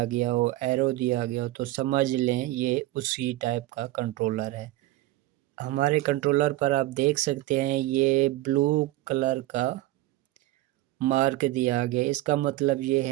گیا ہو، ایرو دیا گیا ہو، تو سمجھ لیں یہ اسی ٹائپ کا کنٹرولر ہے۔ ہمارے کنٹرولر پر آپ دیکھ سکتے ہیں یہ بلو کلر کا مارک دیا گیا، اس کا مطلب یہ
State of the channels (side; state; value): left; quieter; 16.9 dB